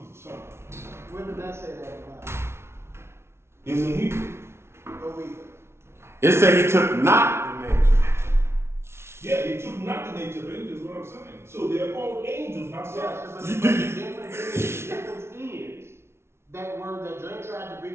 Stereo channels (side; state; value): left; late; 0.12 ms